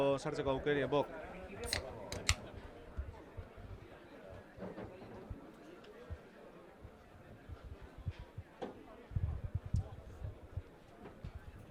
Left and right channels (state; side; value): identical; both; correlation 1.00